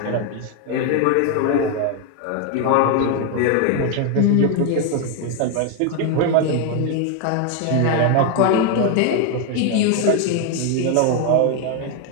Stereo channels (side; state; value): both; different; correlation 0.01